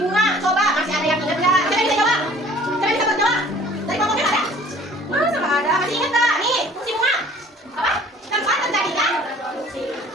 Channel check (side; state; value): both; normal; correlation 0.51